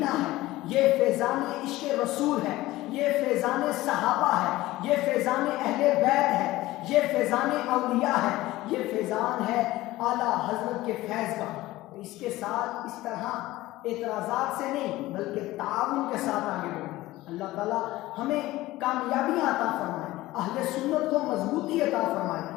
है, ये फैज़ान इश्क़ रसूल है, ये फैज़ान सहाबा है, ये फैज़ान अहले बैत है, ये फैज़ान औलिया है, ये फैज़ान है आला हजरत के फैज़ का। इसके साथ इस तरह एतराज़ात से नहीं बल्कि ताउन के साथ आगे बढ़ें। अल्लाह ताला हमें कामयाबियाँ अता फरमाए, अहले सुन्नत को मजबूती अता फरमाए,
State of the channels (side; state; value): right; quieter; 17.5 dB